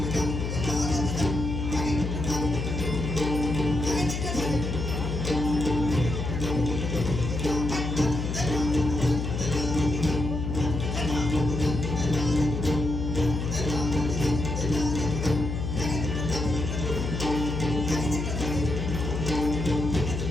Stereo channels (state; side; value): noise; left; hum, 3 dB below the sound